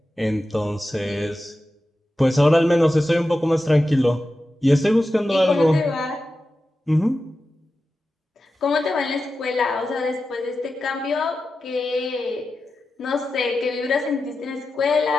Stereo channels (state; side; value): normal; both; correlation 0.92